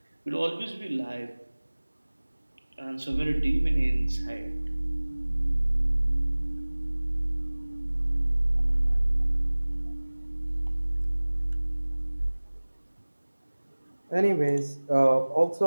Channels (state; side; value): inverted; both; correlation -1.00